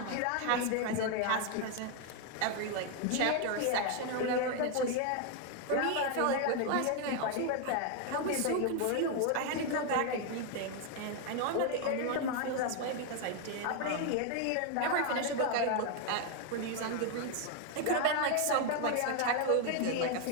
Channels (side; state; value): both; different; correlation 0.00